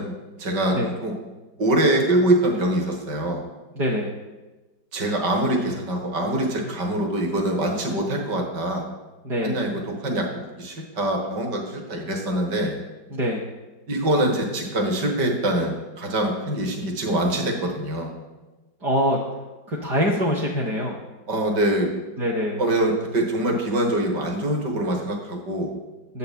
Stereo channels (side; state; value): left; late; 5.2 ms